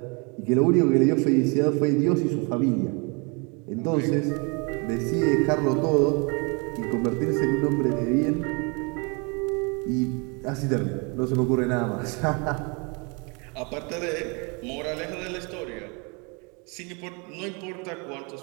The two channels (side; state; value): left; quieter; 31.9 dB